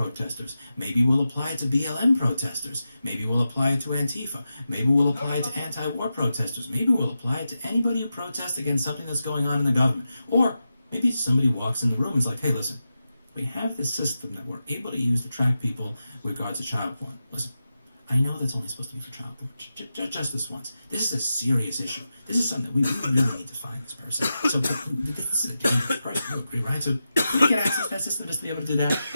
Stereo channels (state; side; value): inverted; both; correlation -0.91